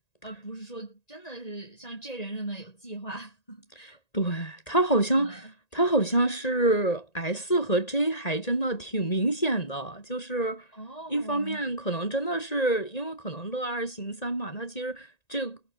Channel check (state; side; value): late; right; 1.9 ms